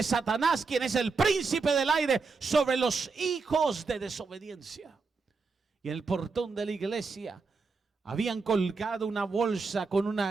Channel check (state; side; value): quieter; left; 4.5 dB